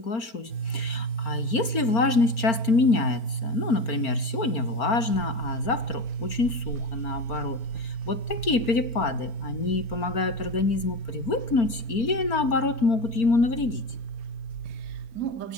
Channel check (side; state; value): right; late; 4.4 ms